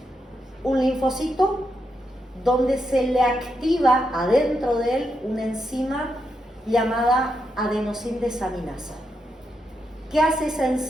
un linfocito donde se le activa adentro de él una enzima llamada adenosindesaminasa. ¿Qué hace esa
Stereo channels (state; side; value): normal; both; correlation 0.83